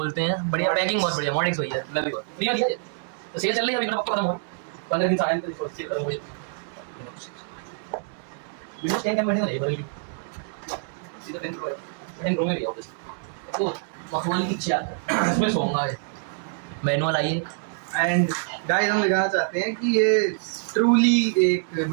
हैं बढ़िया पैकिंग बहुत बढ़िया मॉडेक्स भैया लवी को दिया दिया तो सेल चल रही है अभी मेरा पक्का खत्म हो 15 दिन साल तो सेल खत्म हो जाए विंडोज 10 का बैठे नहीं बल्कि सीधा 10 प्रो में भी ऑफिस तो मखमल की चार इसमें सोऊंगा मैनुअल आइए एंड गाइस हम दिखाना चाहते हैं कि ये ट्रूली एक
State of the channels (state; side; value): silent; left; digital silence